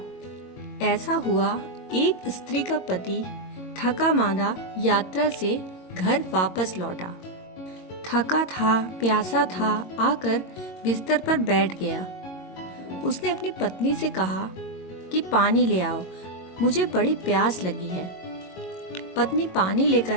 ऐसा हुआ, एक स्त्री का पति थका मांदा यात्रा से घर वापस लौटा। थका था, प्यासा था, आकर बिस्तर पर बैठ गया। उसने अपनी पत्नी से कहा कि पानी ले आओ, मुझे बड़ी प्यास लगी है। पत्नी पानी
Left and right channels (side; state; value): right; late; 22 ms